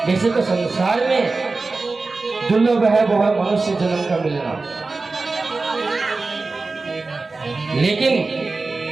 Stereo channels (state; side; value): quieter; left; 3.7 dB